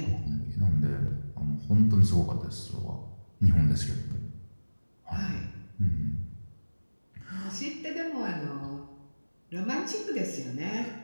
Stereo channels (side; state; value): both; inverted; correlation -1.00